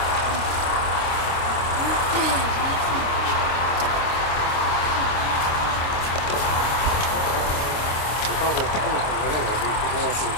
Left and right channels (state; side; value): late; right; 26 ms